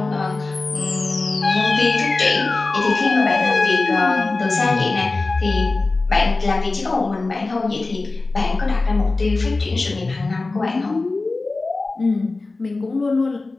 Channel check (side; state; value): right; quieter; 3.5 dB